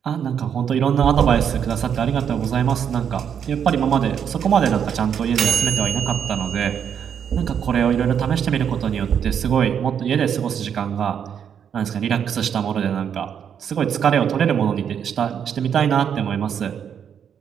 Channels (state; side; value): quieter; left; 8.1 dB